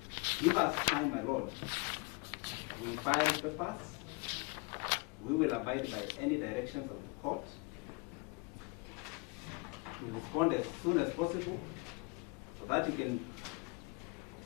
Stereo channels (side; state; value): right; quieter; 29.0 dB